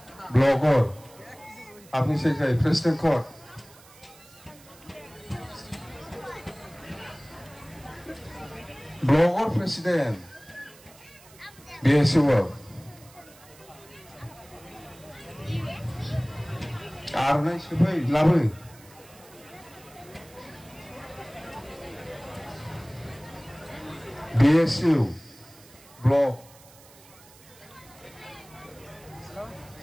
ব্লগর আপনি সেক্রেটারি প্রেসিডেন্ট কোড ব্লগর প্রেসিডেন্ট বিএসইউ আর নাই সবাই লাভে BSU blog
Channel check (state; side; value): noise; right; hiss, 23 dB below the sound